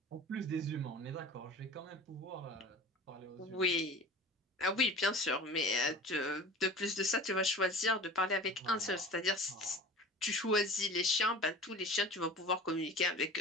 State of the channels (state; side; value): normal; both; correlation 0.38